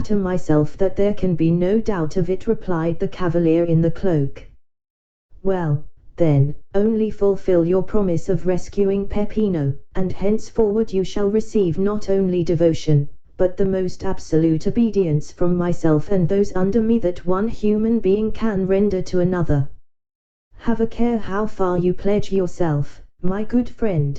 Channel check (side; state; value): both; identical; correlation 1.00